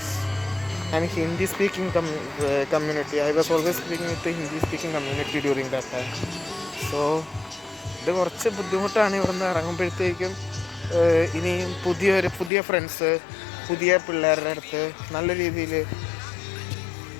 an Hindi speaking community. I was always speaking with the Hindi speaking community during that time. So ഇത് കുറച്ച് ബുദ്ധിമുട്ടാണ് ഇവിടുന്ന് ഇറങ്ങുമ്പോഴത്തേക്കും. ഇനിയും പുതിയ ഫ്രണ്ട്സ്, പുതിയ പിള്ളേരുടെ അടുത്ത് നല്ല രീതിയിൽ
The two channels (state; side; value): drops out; right; at 12.5 s